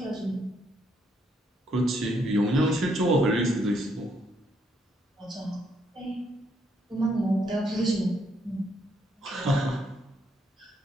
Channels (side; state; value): both; normal; correlation 0.73